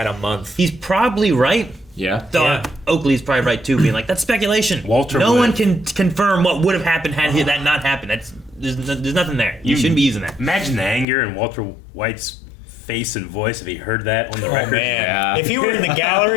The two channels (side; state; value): right; drops out; at 11.1 s